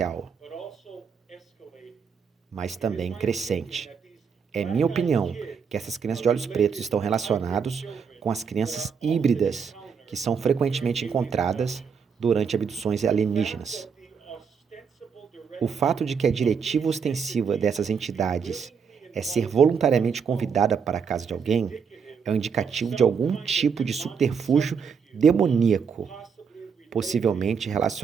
mas também crescente. É minha opinião que essas crianças de olhos pretos estão relacionadas com as crianças híbridas que são frequentemente encontradas durante abduções alienígenas. O fato de que a diretiva ostensiva dessas entidades é ser voluntariamente convidada para a casa de alguém é um indicativo de algum tipo de subterfúgio demoníaco, possivelmente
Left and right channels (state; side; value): quieter; left; 6.3 dB